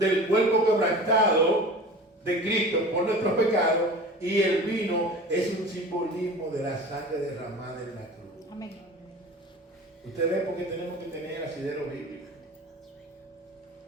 cuerpo quebrantado de Cristo por nuestros pecados y el vino es un simbolismo de la sangre derramada en la cruz. Amén. Usted ve por qué tenemos que tener asidero bíblico.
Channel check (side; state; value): both; normal; correlation 0.37